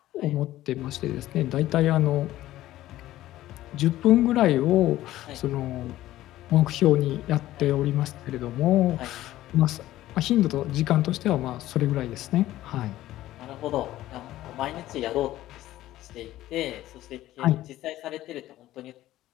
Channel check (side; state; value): right; quieter; 14.8 dB